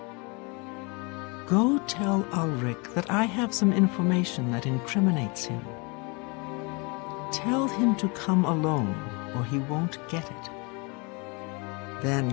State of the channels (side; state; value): right; quieter; 30.0 dB